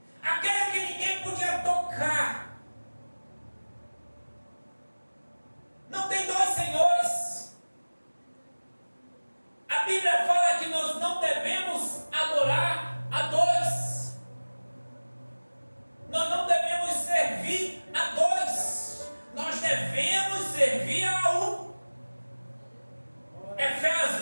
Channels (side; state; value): both; inverted; correlation -1.00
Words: aquele que ninguém podia tocar. Não tem dois senhores. A Bíblia fala que nós não devemos adorar a dois, nós não devemos servir a dois, nós devemos servir a um.